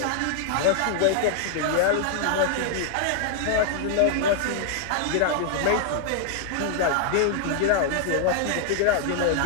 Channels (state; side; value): different; both; correlation 0.00